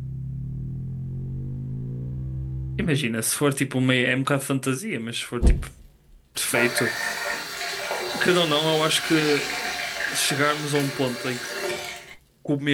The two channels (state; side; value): identical; both; correlation 1.00